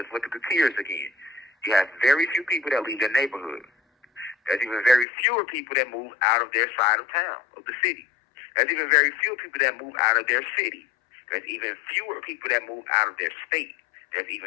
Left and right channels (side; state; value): right; drops out; at 5.1 s